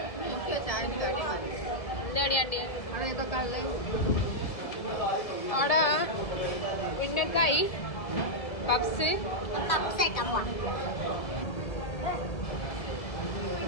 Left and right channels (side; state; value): right; late; 1.8 ms